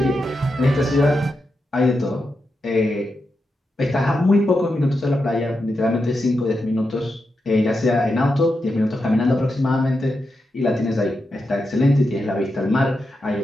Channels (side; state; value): both; normal; correlation 0.87